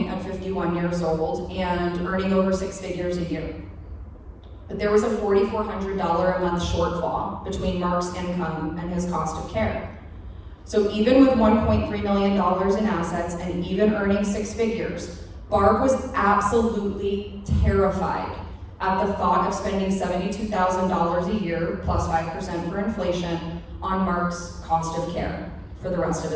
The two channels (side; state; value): both; identical; correlation 1.00